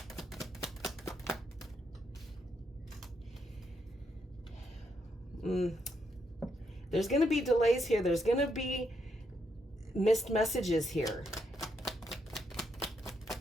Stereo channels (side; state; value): both; normal; correlation 0.78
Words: There's going to be delays here. There's going to be missed messages here.